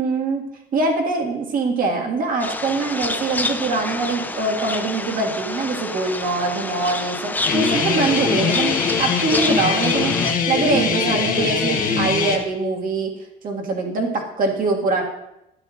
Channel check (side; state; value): both; normal; correlation 0.28